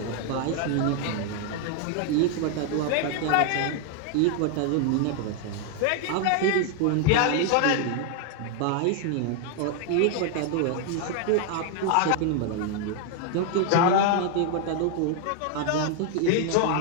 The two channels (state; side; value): different; both; correlation 0.01